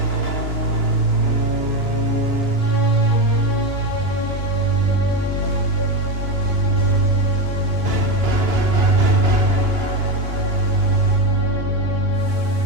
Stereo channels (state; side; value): late; left; 2.9 ms